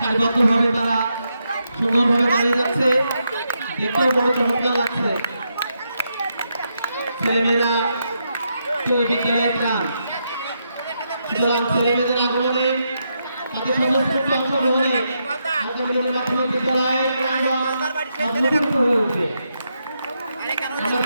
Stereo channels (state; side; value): inverted; both; correlation -0.82